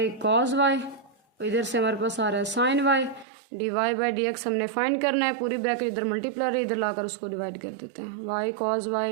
कॉस वाई, इधर से हमारे पास आ रहा है sine y. D Y by D x हमने फाइंड करना है, पूरी ब्रैकेट इधर मल्टीप्लाई इधर लाकर उसको डिवाइड कर देते हैं, y cos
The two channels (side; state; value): left; drops out; at 3.2 s